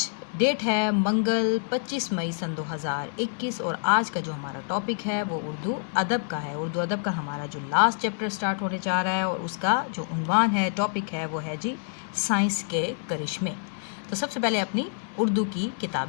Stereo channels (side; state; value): right; silent; 60 dB below the other